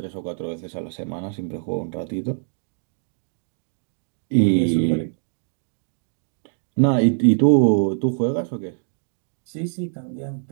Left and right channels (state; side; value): silent; left; digital silence